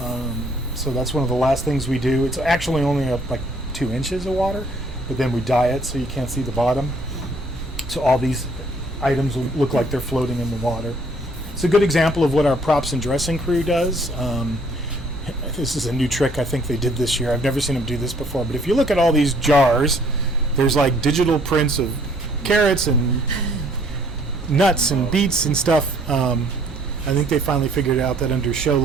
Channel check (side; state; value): both; normal; correlation 0.61